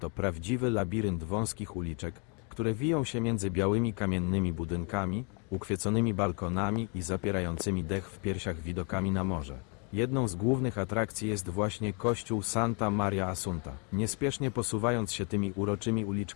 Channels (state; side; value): quieter; right; 35.9 dB